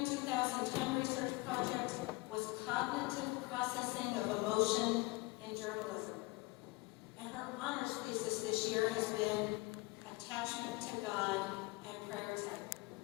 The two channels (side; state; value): right; quieter; 23.4 dB